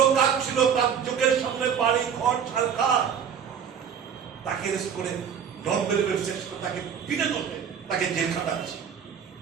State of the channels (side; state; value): left; quieter; 7.7 dB